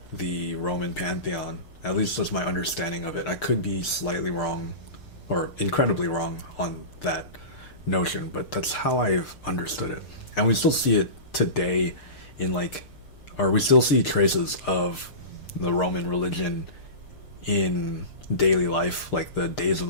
the Roman pantheon. At least that's my understanding of it. I could be slightly wrong or incredibly wrong on that notion, but that's how I've understood it. And we still see it today in like, or we still see traces of the Roman religion in daily life. Like the days of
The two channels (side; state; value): right; late; 6.7 ms